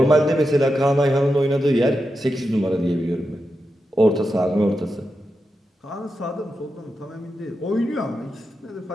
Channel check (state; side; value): normal; both; correlation 0.88